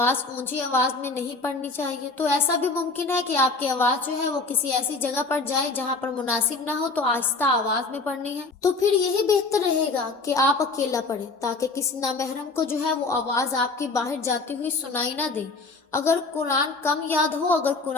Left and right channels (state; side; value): quieter; right; 3.7 dB